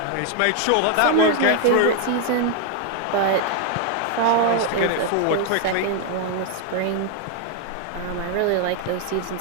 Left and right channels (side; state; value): both; different; correlation 0.00